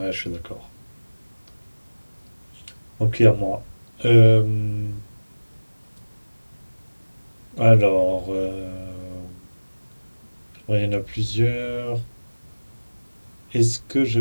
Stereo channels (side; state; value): both; inverted; correlation -1.00